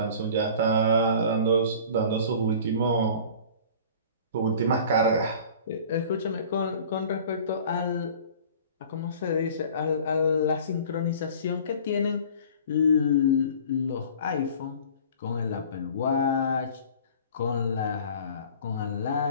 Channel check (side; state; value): both; inverted; correlation -0.45